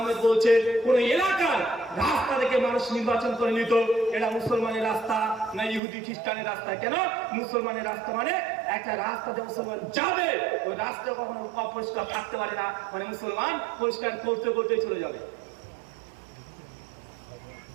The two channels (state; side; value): drops out; left; at 5.8 s